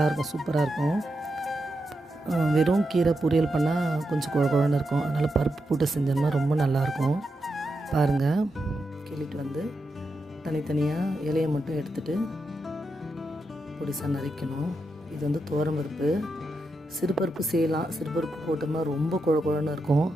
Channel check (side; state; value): both; normal; correlation 0.86